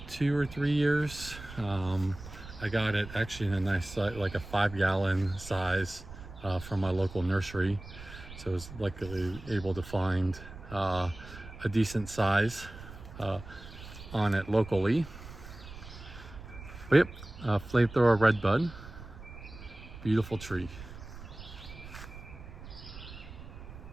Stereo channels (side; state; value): right; noise; rumble, 14 dB below the sound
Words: 2 or 3 years. I got it actually in a nice, like a 5-gallon size from my local nursery. So I was luckily able to find a decent size on it locally. But yep, Flamethrower Redbud, beautiful tree.